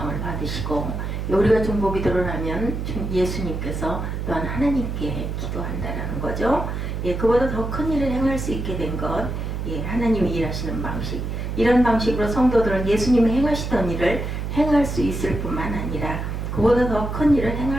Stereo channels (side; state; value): right; noise; hum, 4 dB below the sound